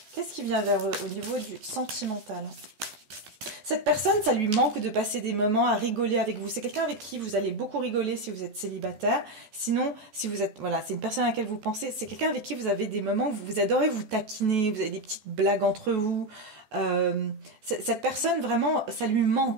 qu'est-ce qui vient vers eux au niveau du sentimental? Cette personne, ça lui manque de passer des moments à rigoler avec vous. C'est quelqu'un avec qui vous allez beaucoup rigoler si vous êtes célibataire. Sinon, si vous êtes, voilà, c'est une personne à laquelle vous pensez. C'est quelqu'un avec qui vous avez des moments où vous adorez vous taquiner, vous avez des petites blagues entre vous. Cette personne, vraiment, ça lui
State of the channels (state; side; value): late; left; 14 ms